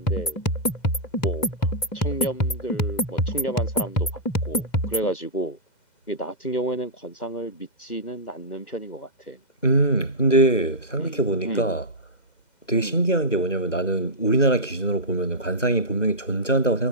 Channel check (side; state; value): right; late; 2.7 ms